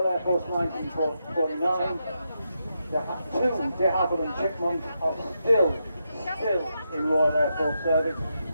Air Force 1949. Two de Havilland and Chipmunk are still in Royal Air Force service.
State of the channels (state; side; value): inverted; both; correlation -0.84